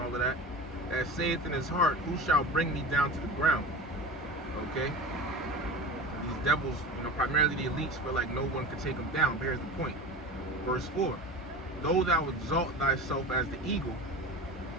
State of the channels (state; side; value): normal; both; correlation 0.31